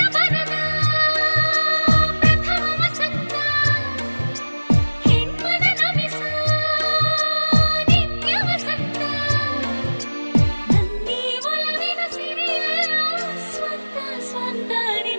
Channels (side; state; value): both; inverted; correlation -1.00